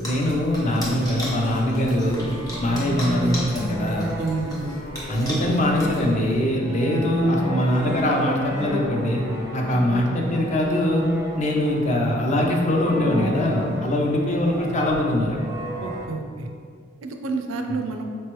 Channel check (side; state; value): both; normal; correlation 0.65